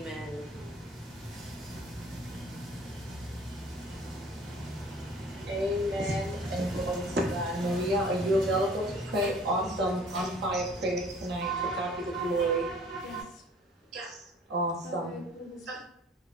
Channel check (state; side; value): normal; both; correlation 0.51